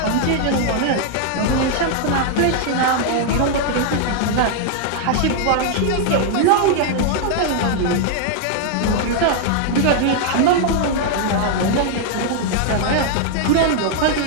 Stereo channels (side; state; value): both; different; correlation 0.00